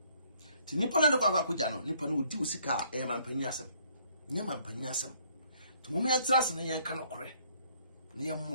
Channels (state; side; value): inverted; both; correlation -0.64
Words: ti nipa na de akwakuja no nipa no odi usika mampanyi asem nya mampanyi asem to mum ya trase ne yanka no kore ne